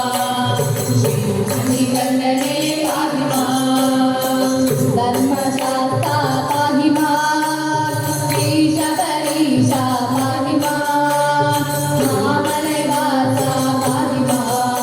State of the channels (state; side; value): identical; both; correlation 1.00